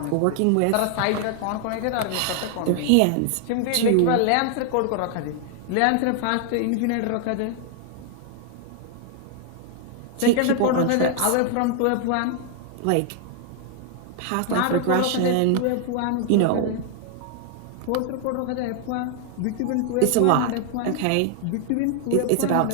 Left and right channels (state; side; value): different; both; correlation 0.00